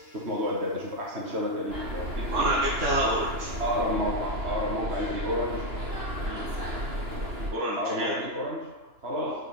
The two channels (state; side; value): late; left; 2.9 ms